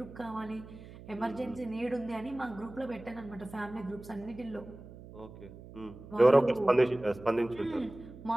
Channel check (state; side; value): noise; right; hum, 17 dB below the sound